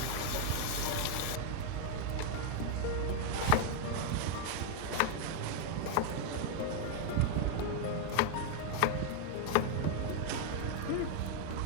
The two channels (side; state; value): both; different; correlation 0.00